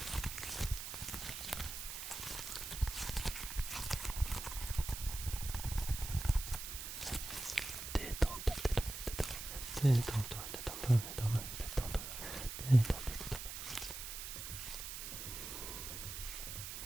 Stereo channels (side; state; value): right; noise; hiss, 7 dB below the sound